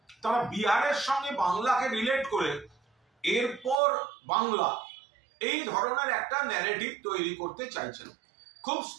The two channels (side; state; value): left; drops out; at 3.8 s